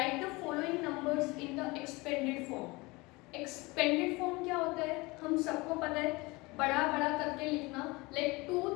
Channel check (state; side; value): quieter; right; 23.9 dB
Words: the following numbers in the expanded form. Expanded form क्या होता है? हम सबको पता है, बड़ा बड़ा करके लिखना. लाइक